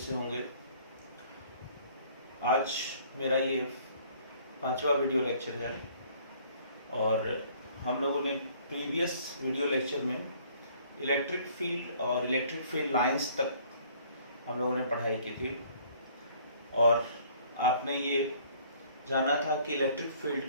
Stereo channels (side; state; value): both; inverted; correlation -0.57